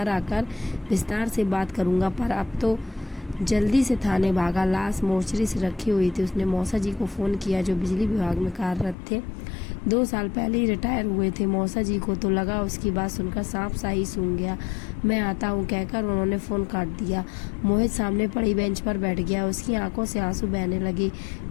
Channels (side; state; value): right; drops out; at 9.0 s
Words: आकर विस्तार से बात करूँगा। पर अब तो जल्दी से थाने भागा। लाश मोर्चरी से रखी हुई थी। उसने मौसा जी को फ़ोन किया, जो बिजली विभाग में कार्यरत थे। 2 साल पहले ही रिटायर हुए थे। मौसा जी को तो लगा उसकी बात सुनकर सांप सा ही सूंघ गया। मैं आता हूँ कहकर उन्होंने फ़ोन काट दिया। मोहित सामने पड़ी बेंच पर बैठ गया। उसकी आंखों से आंसू बहने लगे।